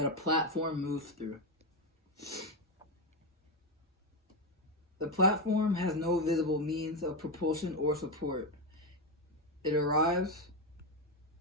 a platform moves through. The platform has no visible means of propulsion or support. It arrives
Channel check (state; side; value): normal; both; correlation 0.09